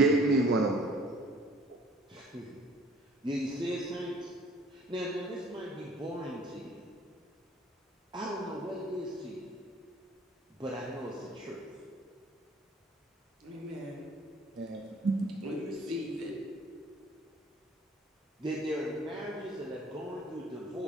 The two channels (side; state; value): both; normal; correlation 0.53